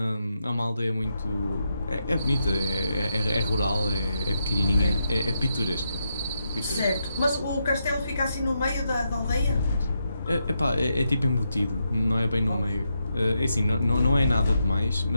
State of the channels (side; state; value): both; inverted; correlation -0.83